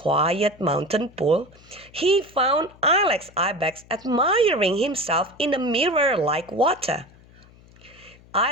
mountain pool, he found Ilex Ibex admiring himself in a mirror like water.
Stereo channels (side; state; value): left; noise; hum, 25 dB below the sound